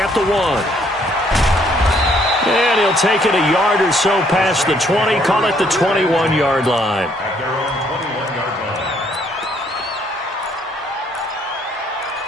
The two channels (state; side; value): normal; both; correlation 0.66